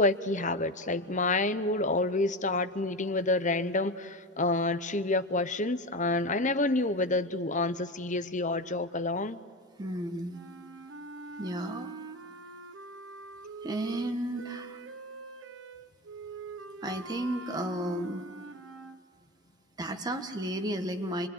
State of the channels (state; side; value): normal; both; correlation 0.22